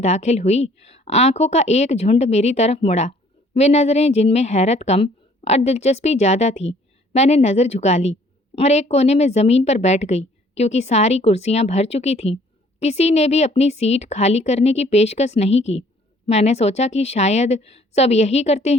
दाखिल हुई, आंखों का एक झुंड मेरी तरफ मुड़ा। वे नज़रें जिनमें हैरत कम और दिलचस्पी ज़्यादा थी। मैंने नज़र झुका ली और एक कोने में ज़मीन पर बैठ गई क्योंकि सारी कुर्सियां भर चुकी थीं। किसी ने भी अपनी सीट खाली करने की पेशकश नहीं की। मैंने सोचा कि शायद सब यही करते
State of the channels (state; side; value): normal; both; correlation 0.58